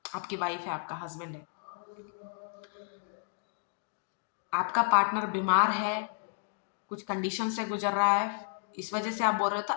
आपकी वाइफ है, आपका हस्बैंड है, आपका पार्टनर बीमार है, कुछ कंडीशन से गुजर रहा है, इस वजह से आप बोल रहे हो तो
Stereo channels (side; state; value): right; silent; digital silence